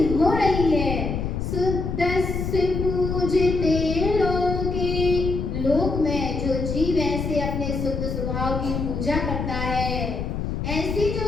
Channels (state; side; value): noise; left; rumble, 3 dB below the sound